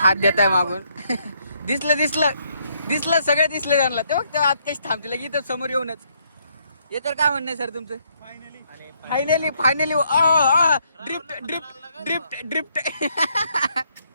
हात देत आहे मागून. दिसलं सगळं दिसलं त्यांना. ते बघ आत कशी थांबतील इथं समोर येऊनच. हे तर काय म्हणणं आहे सर तुमचं? Finally drift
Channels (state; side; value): inverted; both; correlation -0.72